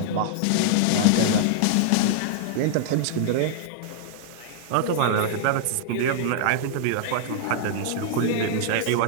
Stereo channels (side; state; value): both; different; correlation -0.01